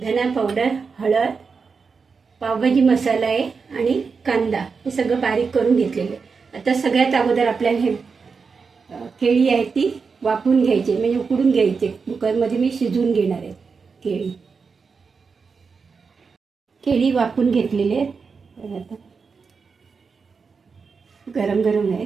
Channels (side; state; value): left; quieter; 5.2 dB